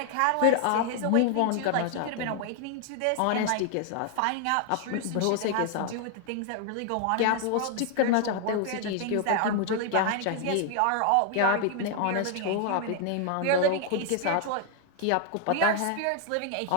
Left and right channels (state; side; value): different; both; correlation 0.00